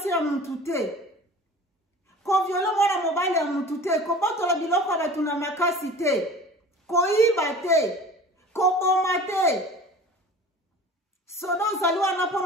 ya mtu te. Ko viole mwana mobali ya mtu te. Ko botola biloko batu na makasi te. Ko iba te. Ko boma te. Sodo zaliwa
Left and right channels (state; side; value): normal; both; correlation 0.41